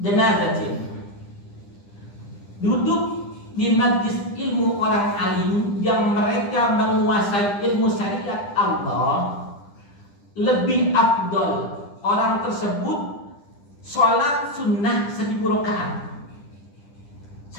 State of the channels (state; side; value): late; right; 10 ms